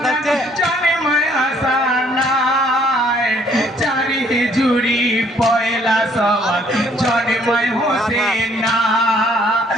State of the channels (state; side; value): normal; both; correlation 0.63